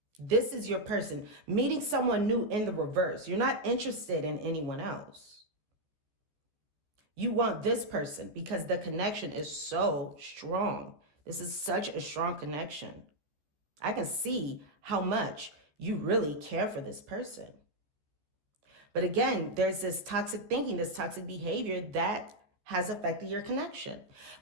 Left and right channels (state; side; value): late; left; 14 ms